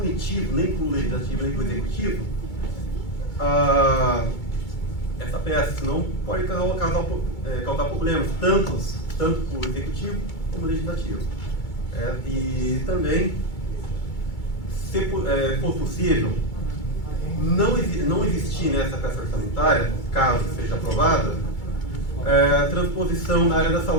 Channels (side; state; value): right; late; 2.3 ms